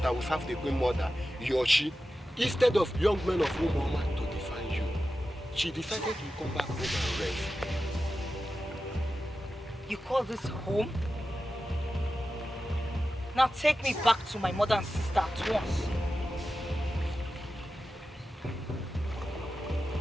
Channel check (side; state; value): both; normal; correlation 0.92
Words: that will serve the Queen Mother, Yoshi, instead of young men of Umoma to define you. She decided to come back home and rest. You call this home? Now take me back to my mother and sister at once.